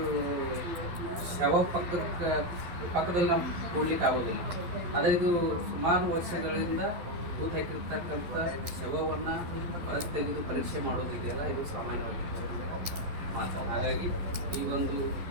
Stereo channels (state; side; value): late; left; 11 ms